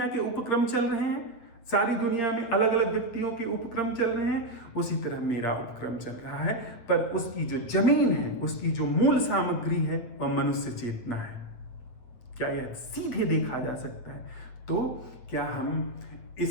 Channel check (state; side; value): late; right; 8.9 ms